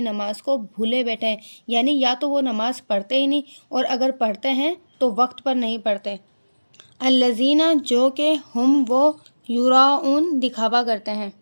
نماز کو بھولے بیٹھے ہیں، یعنی یا تو وہ نماز پڑھتے ہی نہیں، اور اگر پڑھتے ہیں تو وقت پر نہیں پڑھتے۔ الذین، جو کہ، ہم، وہ، یراؤن، دکھاوا کرتے ہیں۔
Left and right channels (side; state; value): both; inverted; correlation -1.00